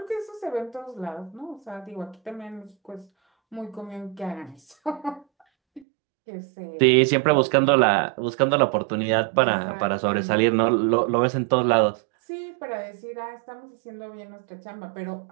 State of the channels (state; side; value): drops out; left; at 5.9 s